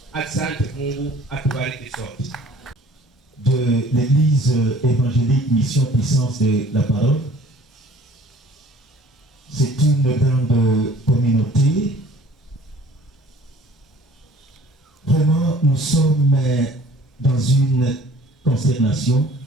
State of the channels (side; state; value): both; normal; correlation 0.51